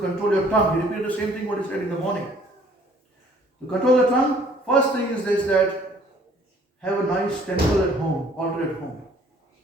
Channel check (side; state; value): both; normal; correlation 0.57